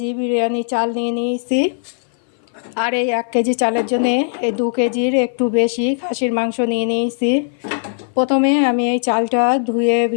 বিরিয়ানি চাল নিয়ে নিয়েছি। আর এই 1 কেজি চালের জন্য এই 2 কেজির একটু বেশি খাসির মাংস নিয়ে নিয়েছি। প্রথমে আমি এই চালটা ধুয়ে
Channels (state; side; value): silent; right; 57 dB below the other